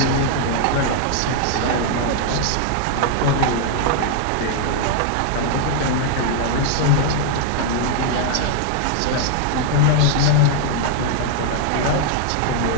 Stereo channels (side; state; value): both; different; correlation 0.00